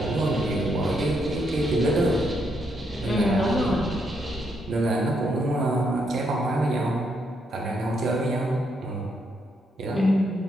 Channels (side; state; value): both; normal; correlation 0.77